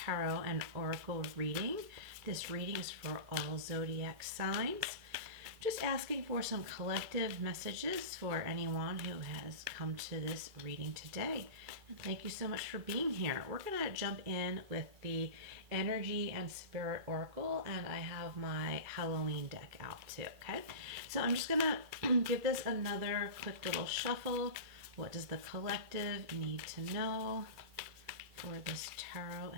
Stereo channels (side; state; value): left; late; 2.4 ms